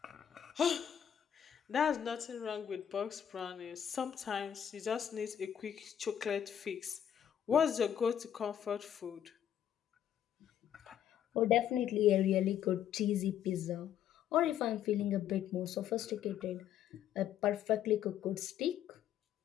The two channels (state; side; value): quieter; right; 9.8 dB